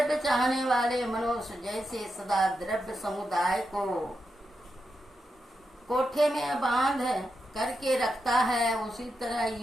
चाहने वाले मनुष्य जैसे सदा द्रव्य समुदाय को कोठे में बांध करके रखता है, उसी तरह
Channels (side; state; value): both; normal; correlation 0.86